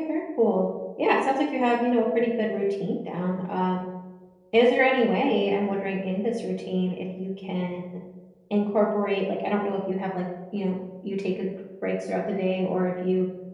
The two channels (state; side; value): identical; both; correlation 1.00